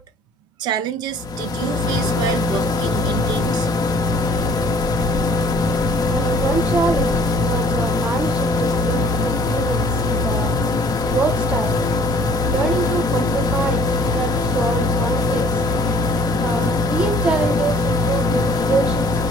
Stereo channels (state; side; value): normal; both; correlation 0.56